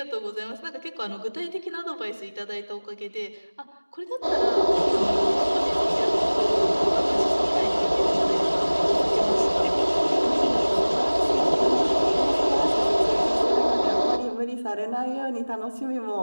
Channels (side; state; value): both; inverted; correlation -1.00